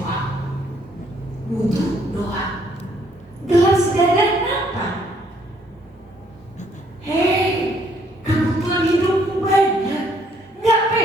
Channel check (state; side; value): normal; both; correlation 0.67